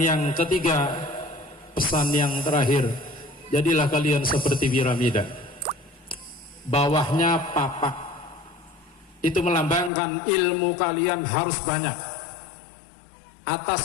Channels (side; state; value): right; drops out; at 9.9 s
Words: ketiga, pesan yang terakhir, jadilah kalian seperti piramida, bawahnya papak. Itu melambangkan ilmu kalian harus banyak,